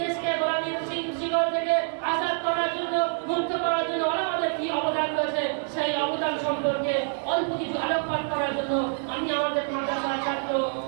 দেশকে গোলামীর শিকড় থেকে আজাদ করার জন্য, মুক্ত করার জন্য ওলামাদের কি অবদান রয়েছে সেই অবদান সম্পর্কে অল্প কিছু আলোকপাত করার জন্য আমি আমাদের মাদ্রাসার ছাত্র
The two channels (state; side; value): silent; left; 60 dB below the other